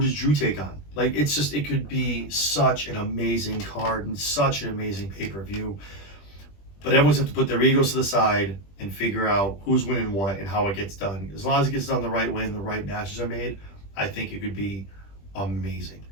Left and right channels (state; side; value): late; right; 20 ms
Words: Drew take on? Like, it's just it could be such an amazing card and such an amazing pay-per-view. But everyone's have to put their egos to the side and figure out who's winning what and how it gets done. As long as it gets done the right way and the right matches are made, I think it could be amazing.